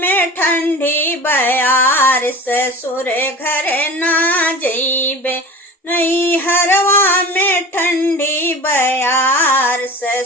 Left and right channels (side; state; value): both; normal; correlation 0.36